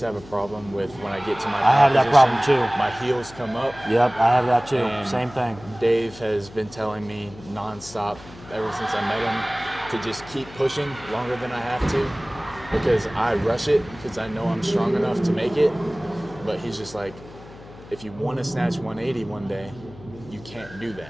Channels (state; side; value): noise; left; hum, 19 dB below the sound